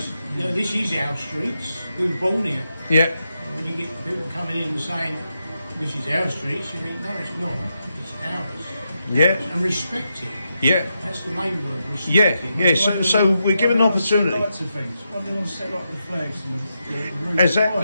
is our streets. We were born here. Yeah. When you get people coming in and saying, this is our streets, you think, no, it's not. It's ours. Yeah. And respect it. Yeah. That's the main word, respect it. Yeah. So we're given an opportunity. Lots of things. Why do they want to set up the flags and the roofs?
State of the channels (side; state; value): both; inverted; correlation -0.85